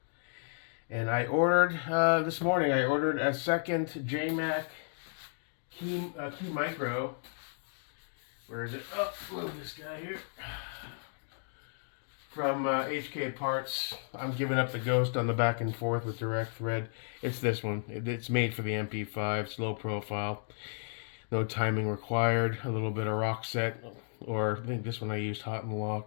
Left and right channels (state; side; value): silent; right; digital silence